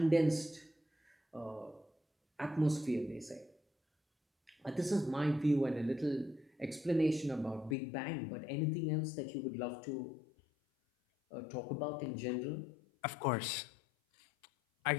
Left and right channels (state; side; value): drops out; right; at 7.8 s